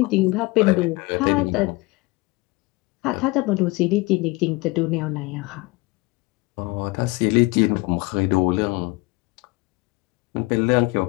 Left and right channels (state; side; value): quieter; right; 23.1 dB